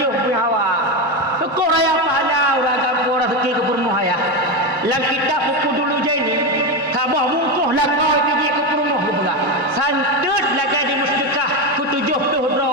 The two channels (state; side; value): normal; both; correlation 0.13